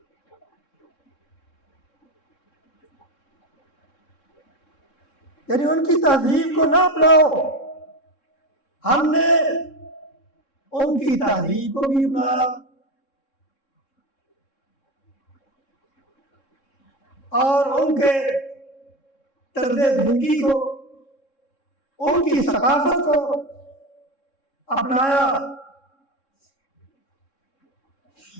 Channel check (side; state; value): right; late; 3.7 ms